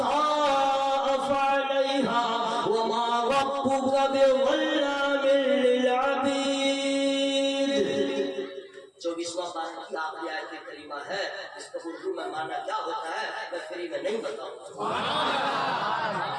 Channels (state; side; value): identical; both; correlation 1.00